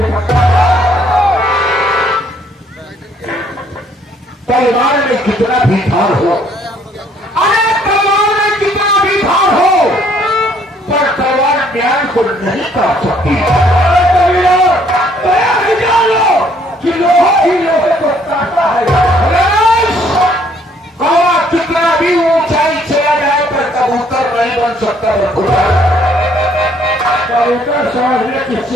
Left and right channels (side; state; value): both; normal; correlation 0.64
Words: तलवार में कितना भी भार हो, अरे तलवार में कितना भी भार हो, पर तलवार ज्ञान को नहीं काट सकती। कि लोहा ही लोहे को काटता है। कौवा कितना भी ऊंचाई चला जाए पर कबूतर नहीं बन सकता। कबूतर समझने की